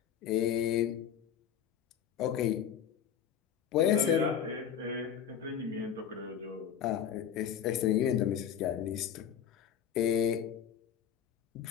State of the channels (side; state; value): right; quieter; 8.8 dB